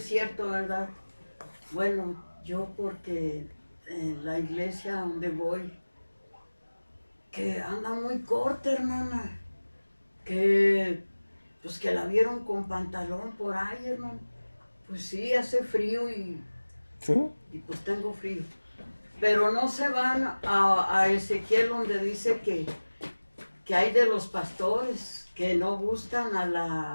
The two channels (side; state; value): both; inverted; correlation -1.00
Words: cierto, ¿verdad? Bueno, yo porque en la iglesia donde voy, que anda muy corta, hermana. Pues que la vieron con pantalón por ahí, hermano. Pues sí, hace frío y ¿Sí? pues tengo frío. Pero no se van a Ezequiel donde dice que hay de los pastores que no buscan a